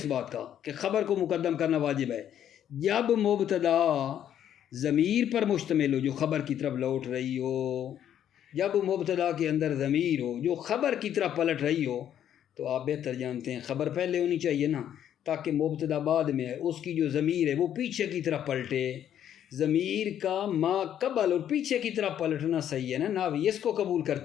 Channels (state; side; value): quieter; right; 10.2 dB